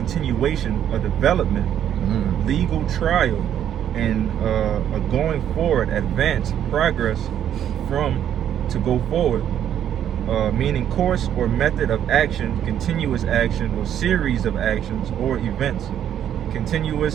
a development, legal trial, and a going forward, advance, progress from to go forward. Meaning course or method of action, continuous action or series of actions or events.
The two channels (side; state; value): left; quieter; 10.1 dB